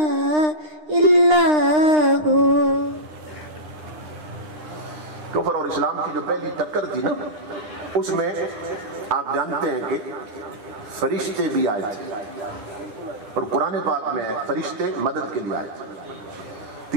الا ہو۔ کفر اور اسلام کی جو پہلی ٹکر تھی نا، اس میں آپ جانتے ہیں کہ فرشتے بھی آئے تھے، اور قرآن پاک میں فرشتے مدد کے لیے آئے تھے۔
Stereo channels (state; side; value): late; left; 9.8 ms